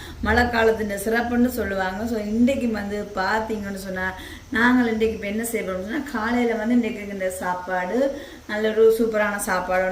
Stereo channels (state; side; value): identical; both; correlation 1.00